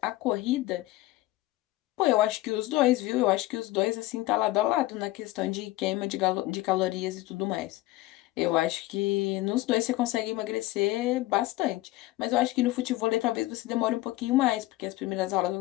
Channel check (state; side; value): quieter; right; 18.0 dB